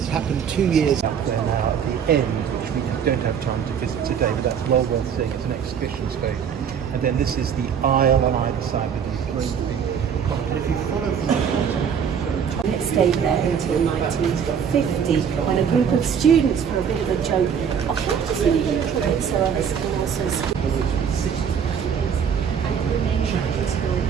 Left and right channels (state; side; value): quieter; left; 7.6 dB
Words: happened 2 years up there now at the end, which we don't have time to visit today, but that's well worth seeing. It's an exhibition space. And then this is the aisle on either side with these great big columns. And if you follow from the bottom, It stayed there until 1950 when a group of students, for a bit of a joke, oh, can I just leave a little bit so others can also see?